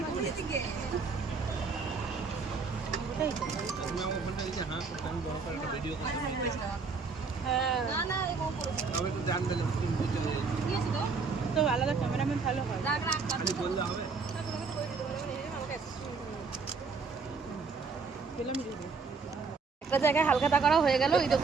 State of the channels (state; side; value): quieter; left; 4.8 dB